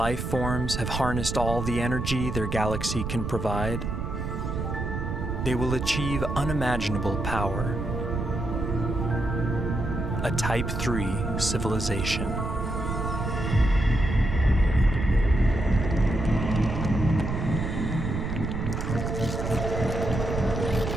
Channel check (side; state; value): right; noise; rumble, 3 dB below the sound